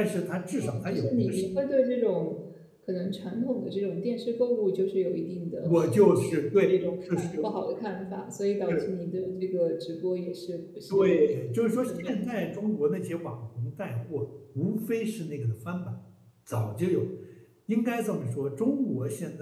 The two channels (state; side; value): identical; both; correlation 1.00